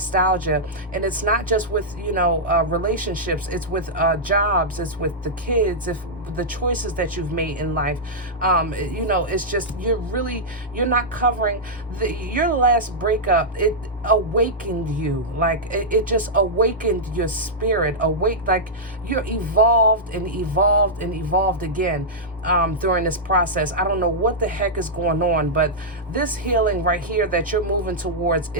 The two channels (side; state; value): both; normal; correlation -0.09